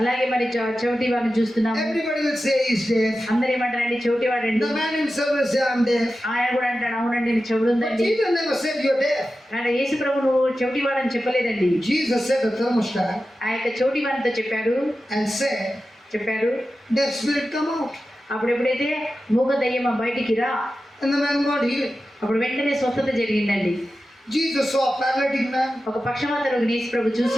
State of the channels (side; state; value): both; normal; correlation 0.93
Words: అలాగే మరి చెవిటి వాడిని చూస్తున్నాం. Everybody will say he's deaf. అందరు ఏమంటారండి? చెవిటి వాడండి. The man himself will say I'm deaf. ఆయన కూడా అంటాడు అవునండి నేను చెవుడు But ఉందండి. Jesus never said you're deaf. ఆయన యేసు ప్రభు నువ్వు చెవిటి వాడని చెప్పలేదండి. Jesus said a thermostat ఆ యొక్క చెవిటి వాడితో చెప్పాడు and deaf spirit come out. అప్పుడు ఎప్పుడైతే మూగ దయ్యమా బయటికి రా, And the man got healed. అప్పుడు వెంటనే స్వస్థత జరిగిందండి. Jesus saw a paralytic man. ఒక పక్షవాత రోగిని యేసు ప్రభు